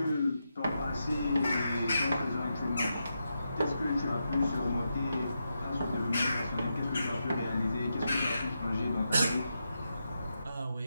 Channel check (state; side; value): inverted; both; correlation -0.86